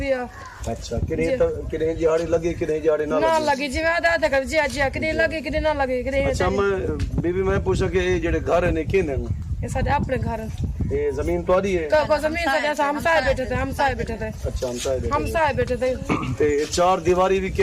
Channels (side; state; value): both; identical; correlation 1.00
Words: ہے۔ اچھا کنے جہاڑی لگی کنے جہاڑی نہ لگی جی میں آدھا کر جی جی کنے لگی کنے نہ لگی کنے اچھا میں بی میں پوچھا کہ یہ جڑے گھر ہیں کینے یہ سارے اپنے گھر یہ زمین تہاڈی ہے؟ کو زمین سے جیسا ہم سائے بیٹھے تھے اچھا ہم سائے بیٹھے تھے تے 4 دیواری بھی